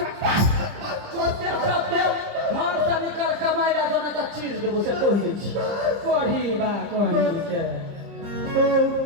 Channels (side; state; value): left; late; 30 ms